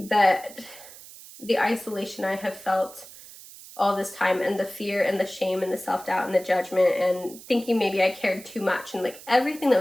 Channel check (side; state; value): right; noise; hiss, 18 dB below the sound